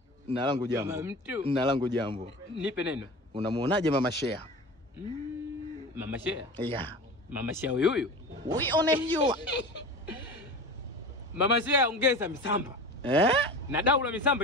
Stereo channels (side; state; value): both; normal; correlation 0.33